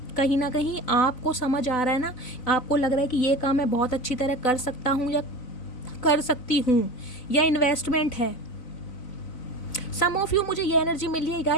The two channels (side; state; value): right; late; 3.9 ms